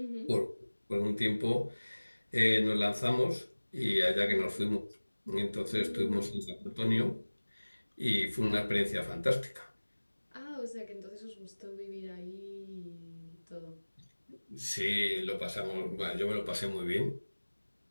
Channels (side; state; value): both; inverted; correlation -1.00